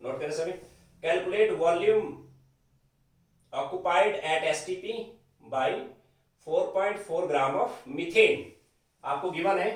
नोट करें सभी, calculate volume occupied at STP by 4.4 gram of methane. आपको गिवन है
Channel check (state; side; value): identical; both; correlation 1.00